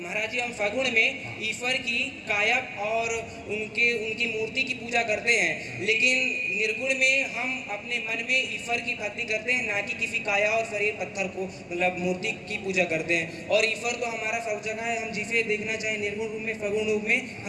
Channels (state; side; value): identical; both; correlation 1.00